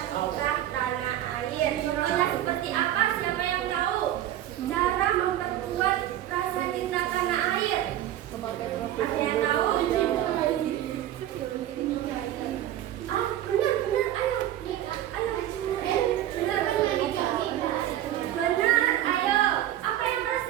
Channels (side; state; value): left; quieter; 12.5 dB